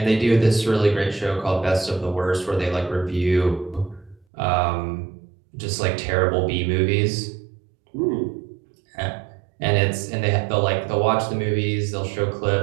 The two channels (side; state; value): left; drops out; at 4.2 s